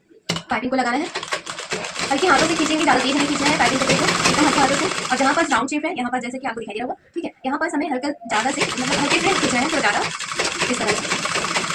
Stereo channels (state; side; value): identical; both; correlation 1.00